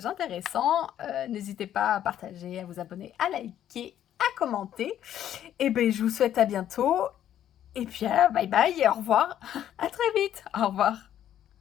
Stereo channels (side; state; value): right; quieter; 11.0 dB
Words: intéressants. N'hésitez pas à partager, à vous abonner, à liker, à commenter. Et bien, je vous souhaite à bientôt. Et puis, bye bye et au revoir. À très vite. Au revoir.